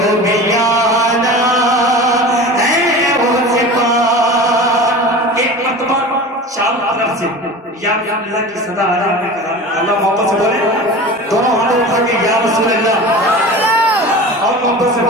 भी आना है उस पार। एक मरतबा चारों तरफ से या अल्लाह की सदा आ रही है, अल्लाह मोहब्बत से बोले दोनों हाथों उठा के या रसूल अल्लाह और मोहब्बत से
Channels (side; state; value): both; normal; correlation 0.35